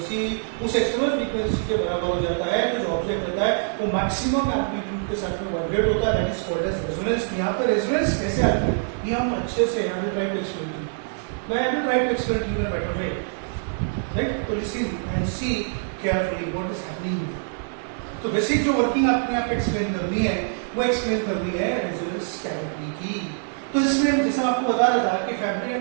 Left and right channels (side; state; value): left; silent; digital silence